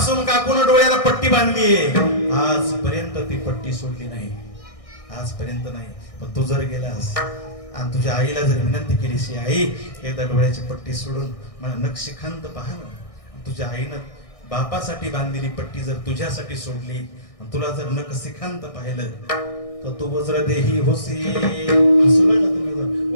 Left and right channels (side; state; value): right; late; 1.6 ms